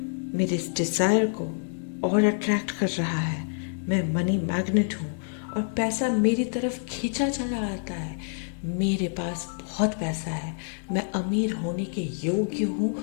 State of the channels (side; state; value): right; silent; digital silence